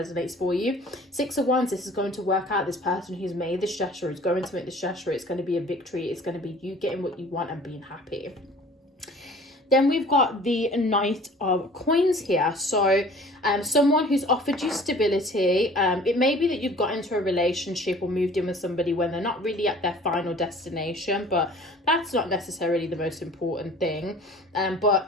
for you. Six of Wands, this is going to work out. This person who's made this gesture is going to make this gesture. It's going to be a victory. It's going to be you getting what you want and being happy. Then we've got the Knight of Coins here. So someone who's offered you stability. It may be that you've got into a relationship or moved in with somebody when they're not really at their final destination, but that's not necessarily the most important thing.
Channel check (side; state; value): both; normal; correlation 0.48